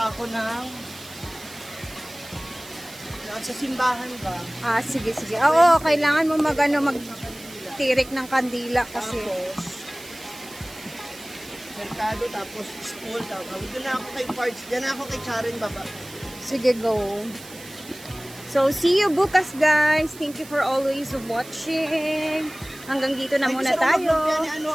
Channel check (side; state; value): right; noise; hiss, 17 dB below the sound